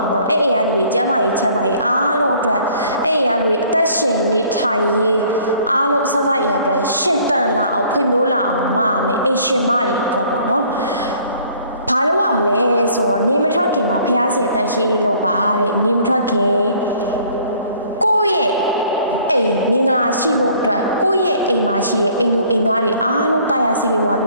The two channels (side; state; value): both; inverted; correlation -0.57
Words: ာပေါ့အဲ့အိမ်ကလူတွေကျမ်းမာရေးချမ်းသာရေးအားလုံးအတွက်အဲ့အိမ်ကလူတွေအသက်ရှင်နေထိုင်ရေးအားလုံးဆက်ဆက်ရအတွက်ရှင်တန်လာအောင်ဖွံ့ဖြိုးလာအောင်မမယ်အိမ်ရှင်မတွေအတွက်ပေါ့နော်ဘာလို့ရမလဲဆိုတော့နေမထွက်ခင်မှာဖျားစီတန်ရှင်းလို့ပါတဲ့နေမထွက်ခင်ကိုယ့်ရဲ့အိမ်မင်္ဂလာရှိဖို့အတွက်ကိုယ့်ရဲ့အိမ်မှာရှိတဲ့အိမ်လူအိမ်သားတွေအားလုံးတရားစီပြီးွားပြ